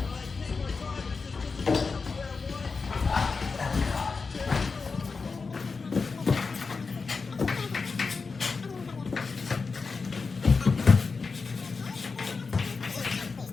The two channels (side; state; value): right; quieter; 4.6 dB